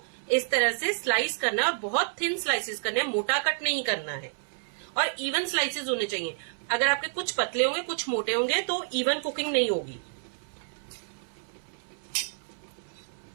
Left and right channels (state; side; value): silent; left; 59 dB below the other